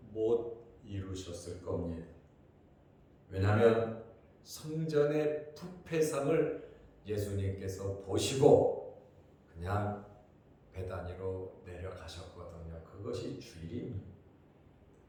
못 이루셨을 겁니다. 왜냐하면 성전의 부패상을 예수님께서 보시고 그냥 베다니로 내려가셨거든요. 그것이 주일입니다.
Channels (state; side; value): identical; both; correlation 1.00